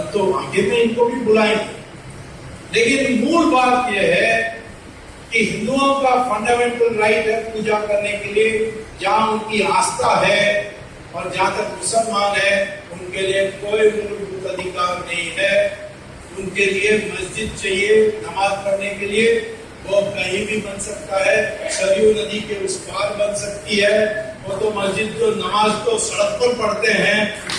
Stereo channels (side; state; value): both; identical; correlation 1.00